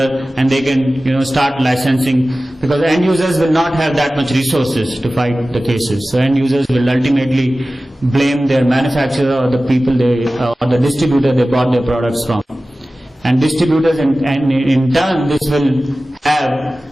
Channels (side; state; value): both; normal; correlation 0.96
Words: and they can start licensing, because end users will not have that much resources to fight the cases. So end users will ultimately blame their manufacturer or the people or the distributor they bought their products from. And distributors and in turn this will have